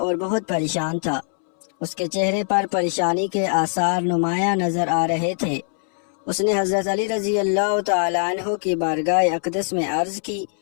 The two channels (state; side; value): silent; right; 64 dB below the other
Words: بہت پریشان تھا۔ اس کے چہرے پر پریشانی کے آثار نمایاں نظر آ رہے تھے۔ اس نے حضرت علی رضی اللہ تعالیٰ عنہ کی بارگاہ اقدس میں عرض کی،